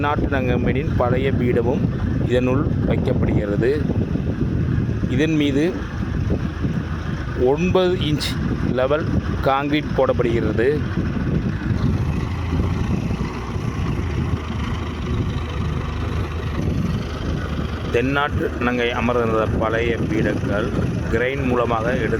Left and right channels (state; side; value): identical; both; correlation 1.00